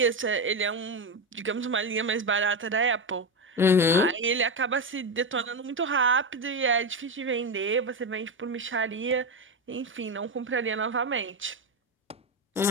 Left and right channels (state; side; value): normal; both; correlation 0.13